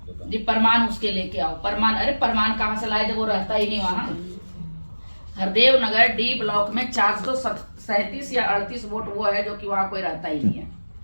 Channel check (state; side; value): inverted; both; correlation -1.00